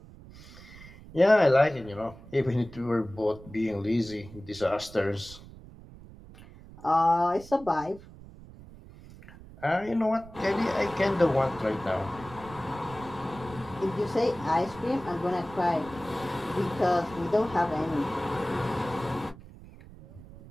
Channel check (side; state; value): right; noise; rumble, 18 dB below the sound